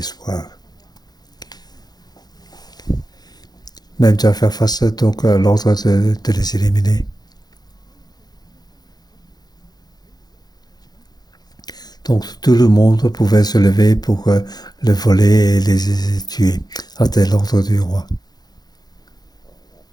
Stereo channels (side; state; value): right; late; 0.19 ms